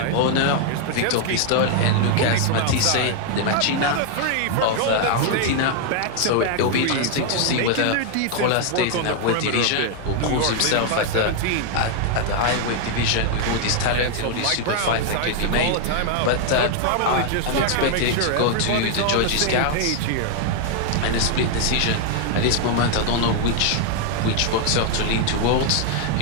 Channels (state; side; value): different; both; correlation 0.00